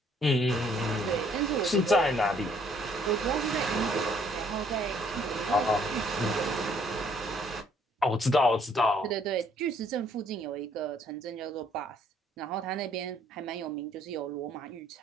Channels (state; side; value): normal; both; correlation 0.64